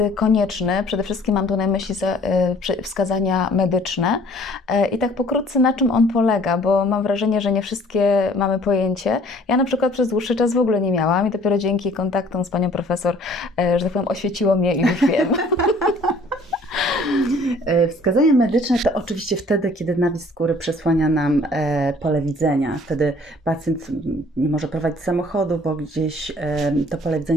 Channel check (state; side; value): normal; both; correlation 0.55